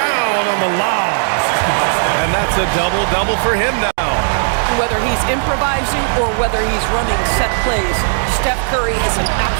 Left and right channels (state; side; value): silent; left; digital silence